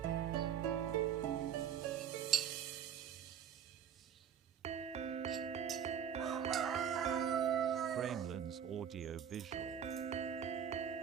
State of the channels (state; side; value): quieter; left; 8.4 dB